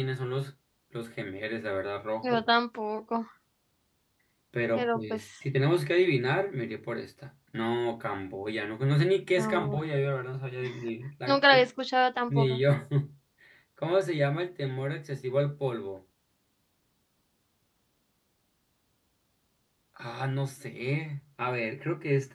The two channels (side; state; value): both; identical; correlation 1.00